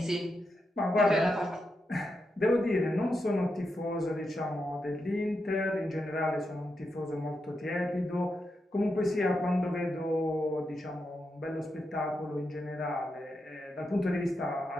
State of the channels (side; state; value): both; normal; correlation 0.86